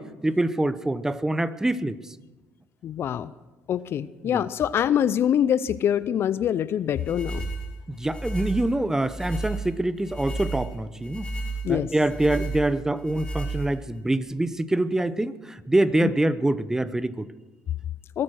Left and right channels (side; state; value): both; normal; correlation 0.81